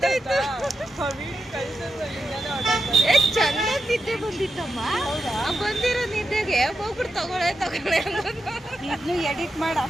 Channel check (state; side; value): normal; both; correlation 0.87